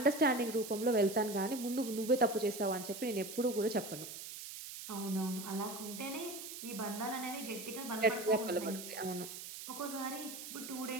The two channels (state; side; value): noise; right; hiss, 10 dB below the sound